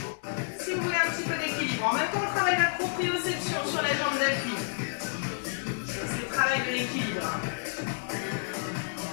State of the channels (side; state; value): right; silent; 58 dB below the other